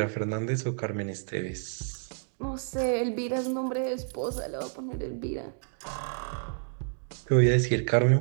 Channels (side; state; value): left; silent; 58 dB below the other